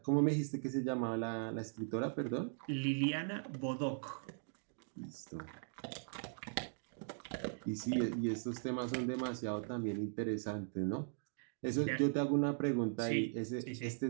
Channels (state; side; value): silent; left; digital silence